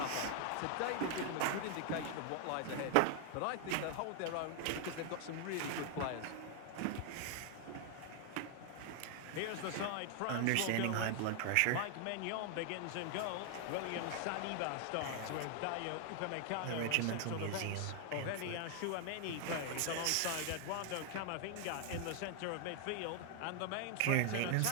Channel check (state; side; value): different; both; correlation 0.00